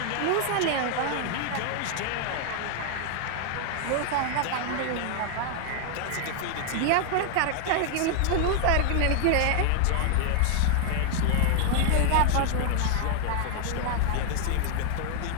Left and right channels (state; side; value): different; both; correlation 0.00